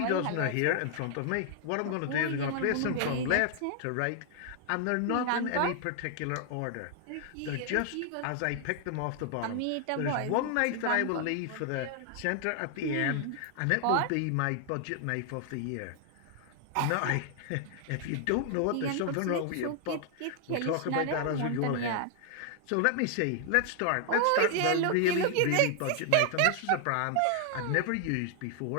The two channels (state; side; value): different; both; correlation 0.00